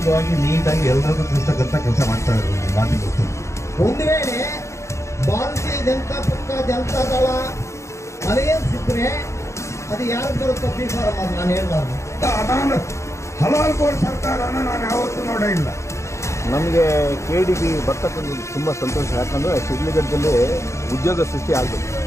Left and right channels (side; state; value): right; late; 0.14 ms